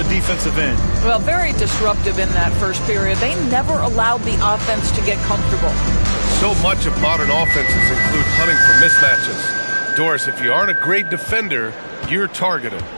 defensive end. Well, very disruptive in that first period. They never allowed the offense to get comfortable. So much of modern offenses include hunting for mismatches. Doris, if you aren't a great defender, you're targeted.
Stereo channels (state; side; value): inverted; both; correlation -1.00